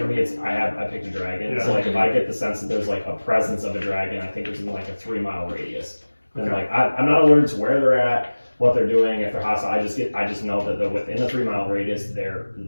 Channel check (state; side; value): inverted; both; correlation -1.00